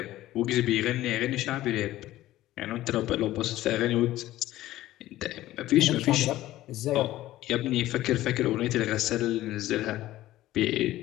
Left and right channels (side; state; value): right; quieter; 15.2 dB